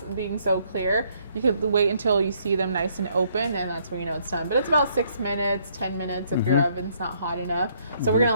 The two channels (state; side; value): inverted; both; correlation -0.68